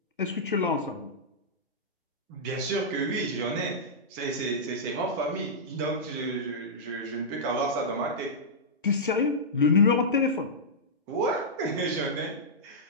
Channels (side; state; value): both; normal; correlation -0.12